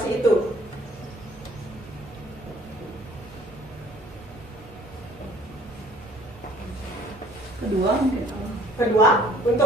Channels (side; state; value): both; normal; correlation 0.55